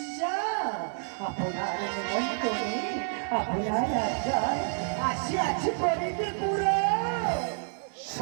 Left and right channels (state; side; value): silent; left; digital silence